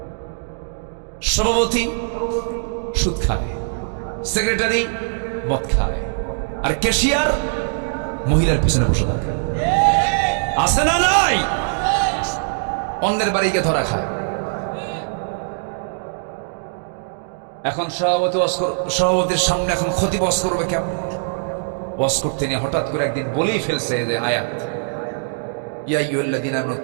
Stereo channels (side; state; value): left; silent; digital silence